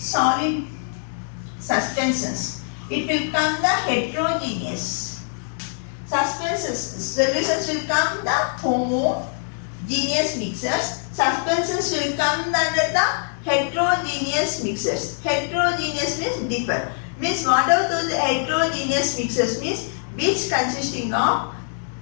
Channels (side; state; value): right; silent; 63 dB below the other